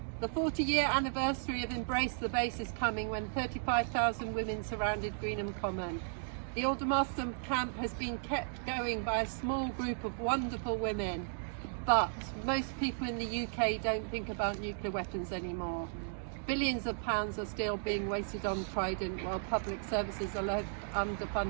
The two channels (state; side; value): silent; left; digital silence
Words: The 40-year anniversary of Embrace the Base is coming when 35,000 women surrounded Greenham Common. The Aldermaston camp has been kept going by a small group of wonderful women, but most people in the UK don't think about nuclear weapons anymore. Billions of pounds are still being wasted on Trident while public services are left